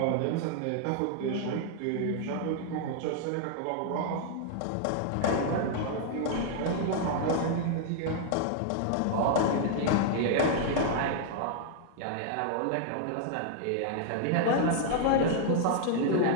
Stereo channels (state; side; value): different; both; correlation -0.01